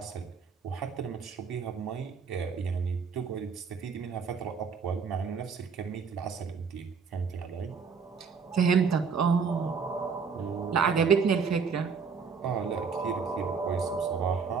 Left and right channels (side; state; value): left; quieter; 5.7 dB